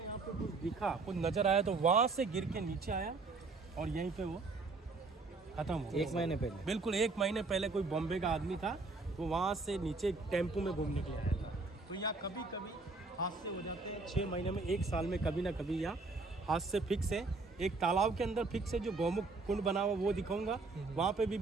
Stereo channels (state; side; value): quieter; left; 3.7 dB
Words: पे कुछ दिखा, कुछ नज़र आया, तो वहाँ से गिर के नीचे आया और यहीं पे वो ख़त्म हो गया। 1 महीने पहले, बिल्कुल 1 महीने पहले कोई बॉम्बे का आदमी था, वो वहाँ से नीचे टेम्पो में घूमने के लिए आया था। तो यहाँ कभी कभी हादसे हो जाते हैं, 6 महीने में, 1 साल में कभी ना कभी यहाँ हादसे फिक्स है। एक तालाब के अंदर फिक्स है, जो गौमुख कुंड बना हुआ वो दिखाऊंगा, वहाँ पे